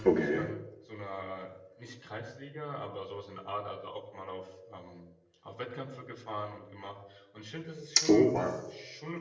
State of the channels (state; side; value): identical; both; correlation 1.00